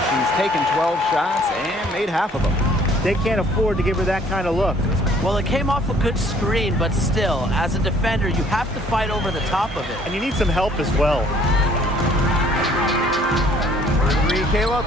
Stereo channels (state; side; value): normal; both; correlation 0.59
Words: She's taken 12 shots and made half of them. They can't afford to give her that kind of look. Well, it came off a good screen, but still, as a defender, you have to fight over the top of it. And you need some help as well. Kayla